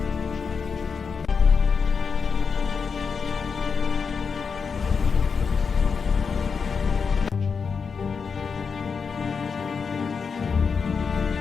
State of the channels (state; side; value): quieter; right; 5.6 dB